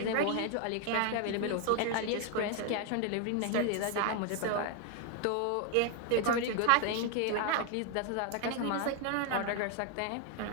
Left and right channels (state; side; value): different; both; correlation 0.01